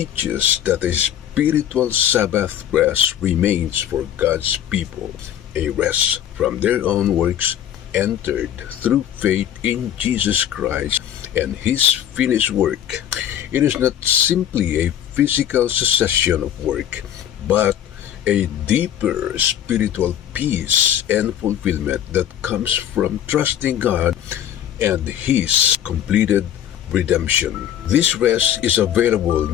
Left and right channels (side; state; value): right; quieter; 10.5 dB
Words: that a spiritual Sabbath rest remains for God's people, a rest from their own works entered through faith in Jesus Christ and His finished work. It is not simply a physical cessation of work, but a deeper spiritual peace and fulfillment that comes from trusting God and His completed redemption. This rest is available